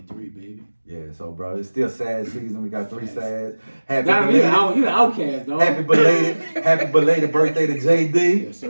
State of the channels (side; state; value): both; inverted; correlation -1.00